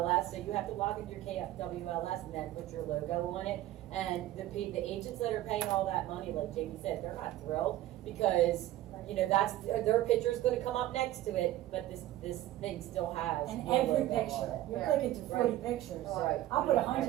so you have to log into your KWLS and then put your logo on it. And the agents that are paying all that money, like Jamie said, they're not thrilled, because, that's, their picture's gonna come up next to it, but this thing still has. And your every logo on picture, it. you're Yeah. clicking through 40 Right. pictures. Right. I'll put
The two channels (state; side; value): quieter; left; 14.6 dB